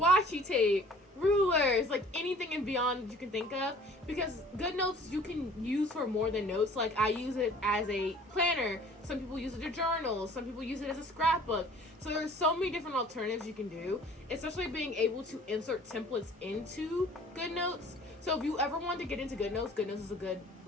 tape, rulers, like anything and beyond that you can think of, because GoodNotes you can use for more than notes. Like, I use it as a planner, some people use it as journals, some people use it as a scrapbook. So there's so many different alternatives you can do, especially being able to insert templates into GoodNotes. So if you ever want to get into GoodNotes, GoodNotes is a good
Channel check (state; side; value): normal; both; correlation 0.51